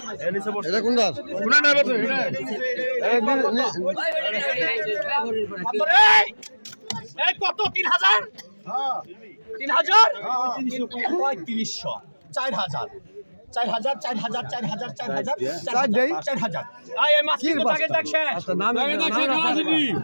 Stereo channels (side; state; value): both; inverted; correlation -1.00